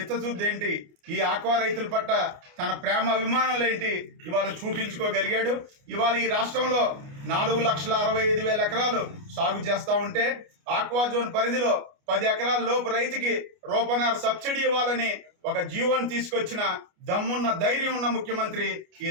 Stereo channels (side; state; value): left; late; 29 ms